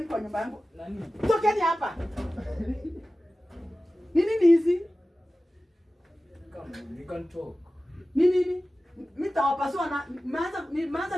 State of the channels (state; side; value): normal; both; correlation 0.95